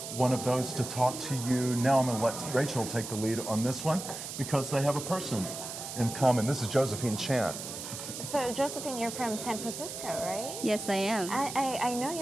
one of those to talk to you now. I'm going to let Rachel take the lead on this one because they have a person in common. This is Josephine Chan. So Josephine, you're from San Francisco, right? Yes, I am. I know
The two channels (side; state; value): right; noise; hiss, 8 dB below the sound